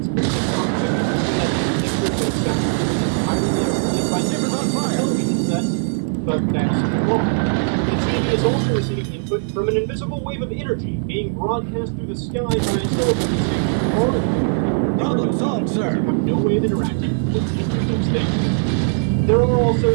to contemplate that these pictures and sounds entirely explained by different television sets, but that's wrong. The TV is also receiving input from an invisible wave of energy being broadcast through the sky by a television station far Problem solved, sir. You have no way of interacting with either of those things. There are also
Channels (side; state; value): left; silent; digital silence